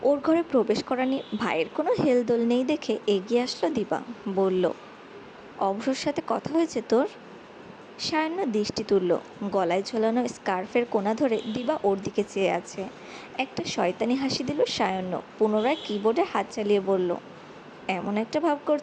ওর ঘরে প্রবেশ করা নিয়ে ভাইয়ের কোনো হেলদোল নেই দেখে এগিয়ে আসলো দিবা। বলল, অভ্রর সাথে কথা হয়েছে তোর? সায়াহ্ন দৃষ্টি তুলল। গলায় ঝোলানো স্কার্ফের কোণা ধরে দিবা ওর দিকে চেয়ে আছে। একটা শয়তানি হাসি দিল সায়াহ্ন, পুনরায় কিবোর্ডে হাত চালিয়ে বলল, এমন একটা ভাব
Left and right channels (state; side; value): identical; both; correlation 1.00